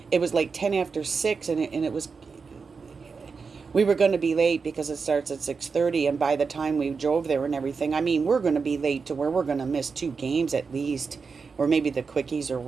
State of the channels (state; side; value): quieter; left; 5.1 dB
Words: it was like 10 after 6, and it was, we were going to be late because it starts at 6:30, and by the time we drove there and everything, I mean, we're going to be late to where we're going to miss 2 games at least, or maybe the quickies or